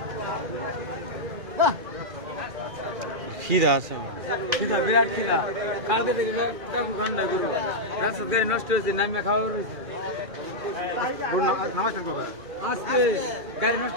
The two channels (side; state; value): left; late; 2.4 ms